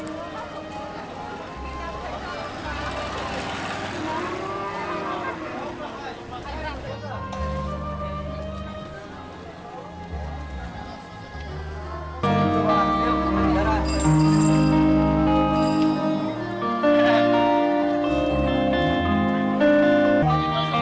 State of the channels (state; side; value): identical; both; correlation 1.00